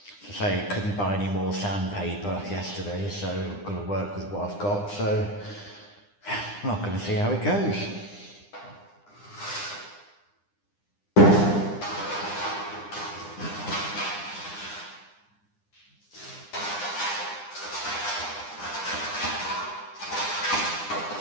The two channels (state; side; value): late; right; 9.9 ms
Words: I say, couldn't buy any more sandpaper yesterday, so I've got to work with what I've got, so I'm not going to see how it goes.